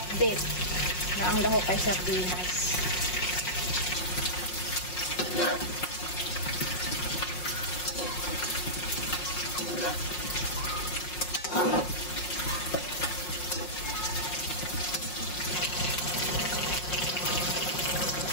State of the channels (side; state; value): right; late; 5.5 ms